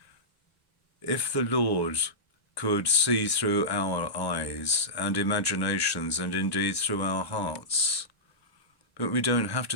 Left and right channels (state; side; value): late; right; 1.0 ms